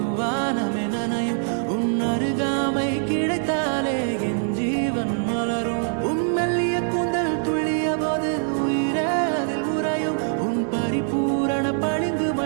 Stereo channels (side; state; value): left; silent; digital silence